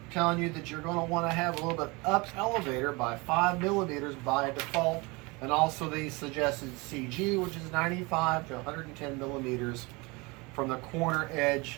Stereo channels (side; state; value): left; quieter; 25.9 dB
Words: telling you that you're going to want to have a little bit up elevator by 5 millimeters by default, and also the suggested CG, which is 95 to 110 millimeters from the corner